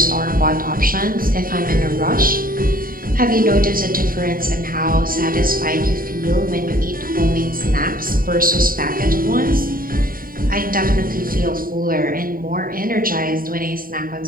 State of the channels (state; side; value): late; left; 0.41 ms